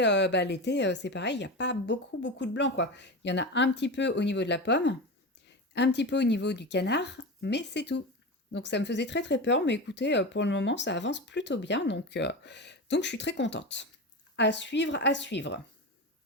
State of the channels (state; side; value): normal; both; correlation 0.24